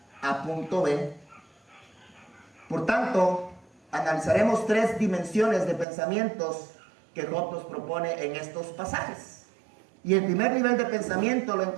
a punto B. Por tanto, analizaremos 3 dimensiones de pensamientos que Job nos propone en estos pasajes. Y el primer nivel de pensamiento lo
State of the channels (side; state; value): left; drops out; at 5.9 s